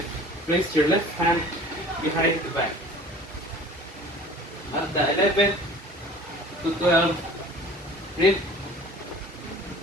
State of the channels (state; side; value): normal; both; correlation 0.45